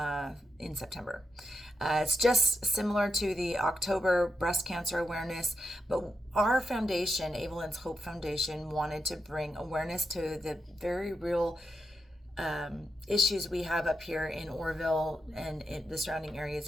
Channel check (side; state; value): both; normal; correlation 0.85